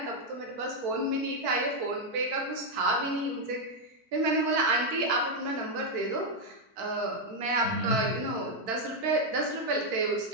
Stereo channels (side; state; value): left; late; 4.5 ms